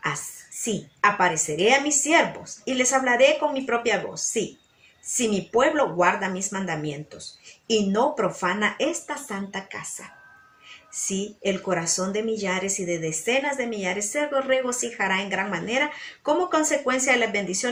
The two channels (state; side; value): identical; both; correlation 1.00